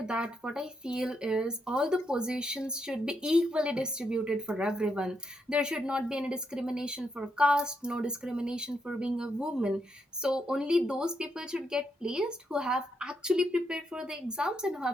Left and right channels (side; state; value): both; normal; correlation 0.80